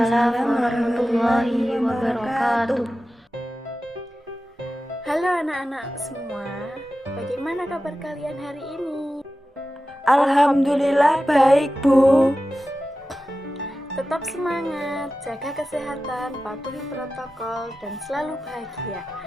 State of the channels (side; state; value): both; normal; correlation 0.94